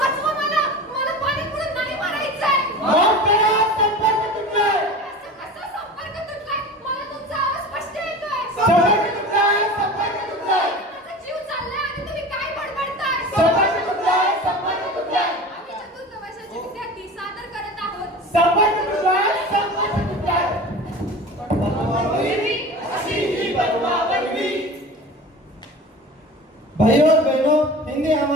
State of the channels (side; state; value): both; normal; correlation 0.35